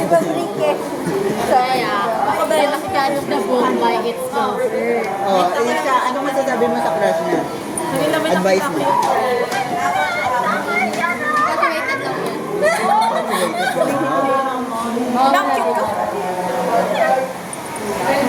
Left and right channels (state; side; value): identical; both; correlation 1.00